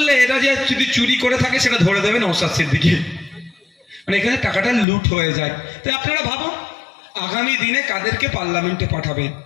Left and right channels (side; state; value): right; drops out; at 4.9 s